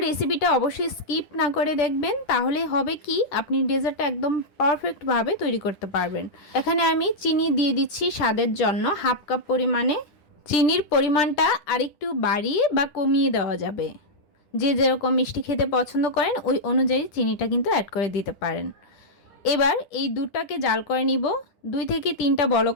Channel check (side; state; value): right; late; 10 ms